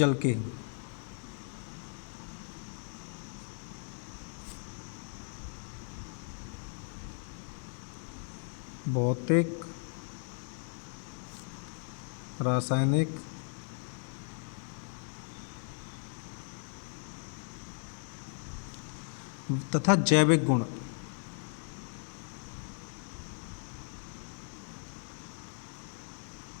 के भौतिक, रासायनिक तथा जैविक गुण।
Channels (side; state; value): right; silent; 54 dB below the other